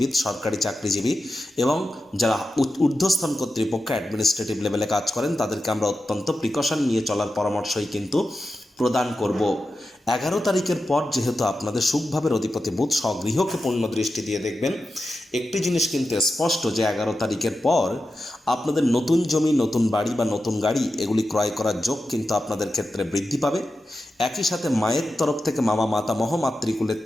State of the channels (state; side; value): normal; both; correlation 0.91